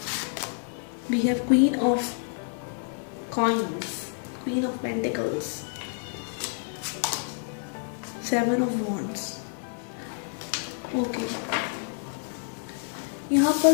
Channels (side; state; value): right; silent; 59 dB below the other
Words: We have queen of coins, queen of pentacles, seven of wands. Okay, यहाँ पर